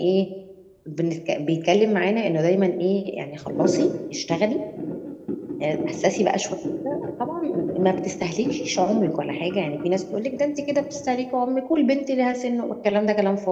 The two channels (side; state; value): both; identical; correlation 1.00